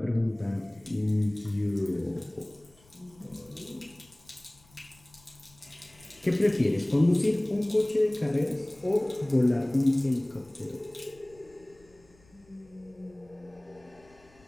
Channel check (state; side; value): noise; left; rumble, 29 dB below the sound